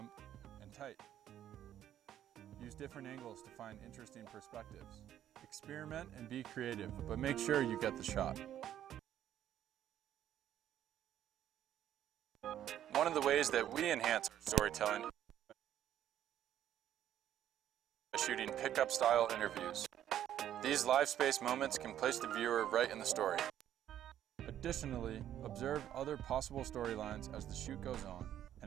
and tight. Use different angles to find interesting perspectives. Experiment and be creative, but make sure you get the shot. One of the ways that we enhance our storytelling is shooting pickup style interviews. These live space moments can place the viewer right in the story. Additionally, observe other possible storylines as the shoot goes on,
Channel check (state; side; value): quieter; left; 11.1 dB